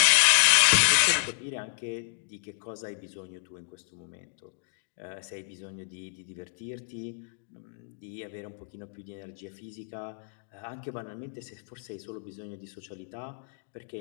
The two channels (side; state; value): right; silent; 58 dB below the other